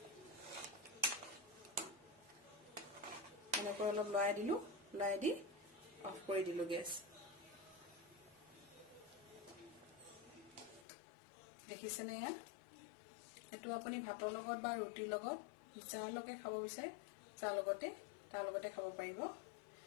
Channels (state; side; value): drops out; right; at 10.9 s